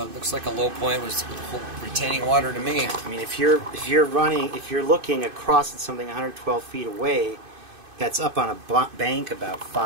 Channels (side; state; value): left; late; 2.5 ms